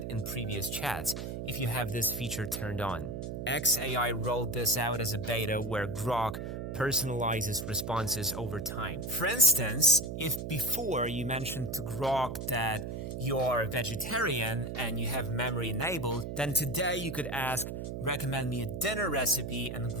in previous chats if you have this feature turned on. XAI rolled this out as a beta where Grok personalizes responses over time. For instance, if before you mentioned to Grok that you're a vegetarian and you have memory enabled, then today you could ask, recommend me a dinner recipe, and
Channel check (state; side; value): noise; right; hum, 5 dB below the sound